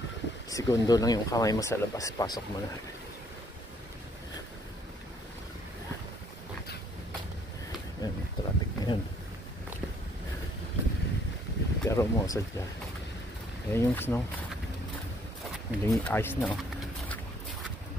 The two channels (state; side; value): normal; both; correlation 0.65